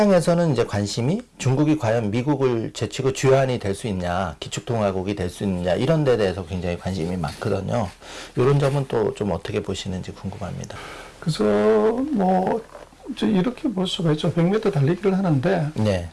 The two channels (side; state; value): both; identical; correlation 1.00